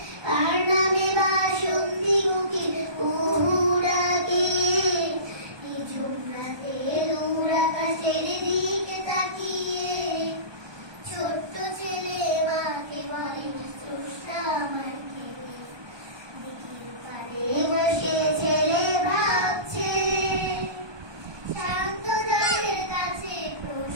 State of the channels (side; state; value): left; late; 1.2 ms